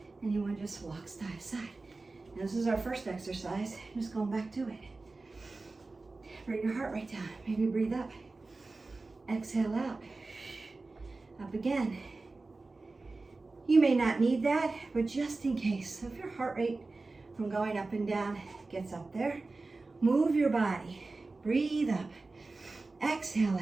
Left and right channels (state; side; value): quieter; left; 3.5 dB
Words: and you want to just walk side to side. Now, this is our first exercise. Just going back to it. Bring your heart rate down. Maybe breathe up. Exhale out. Up again. You may not need that, but just in case. So if your heart rate from going up and down gets up there, move your body. Breathe up. Exhale